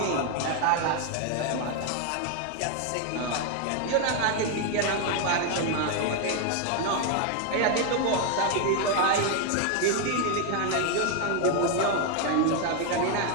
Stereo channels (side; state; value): both; different; correlation 0.01